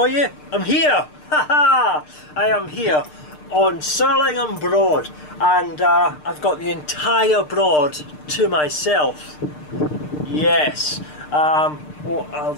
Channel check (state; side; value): late; right; 6.6 ms